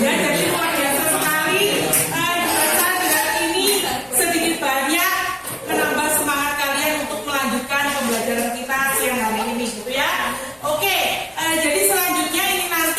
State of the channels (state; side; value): identical; both; correlation 1.00